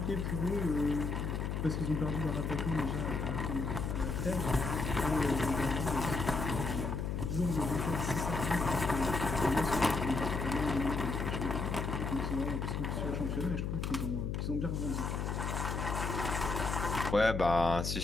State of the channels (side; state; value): left; noise; hum, 1 dB below the sound